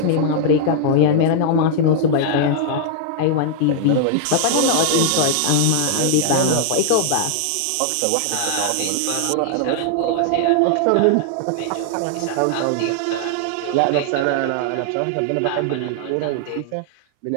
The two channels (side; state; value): both; different; correlation -0.01